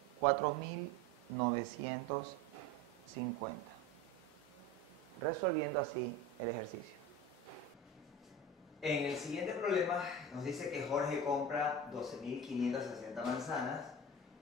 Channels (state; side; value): normal; both; correlation 0.31